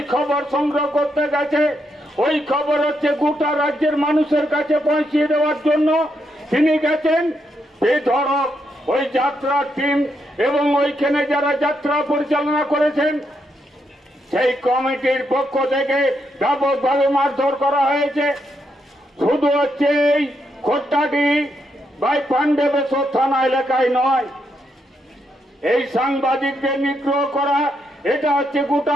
খবর সংগ্রহ করতে গেছে, ওই খবর হচ্ছে গোটা রাজ্যের মানুষের কাছে পৌঁছিয়ে দেওয়ার জন্য তিনি গেছেন। বেধড়ক ওই যাত্রার টিম এবং ওইখানে যারা যাত্রা পরিচালনা করেছেন সেই কমিটির পক্ষ থেকে ব্যাপকভাবে মারধর করা হয়েছে। শুধু হচ্ছে এই খোট্টাটি বাই পাণ্ডবেশ্বর থানা এলাকায় নয়, এই সাংবাদিকদের নিগ্রহ করা এটা হচ্ছে গোটা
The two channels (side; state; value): both; normal; correlation 0.80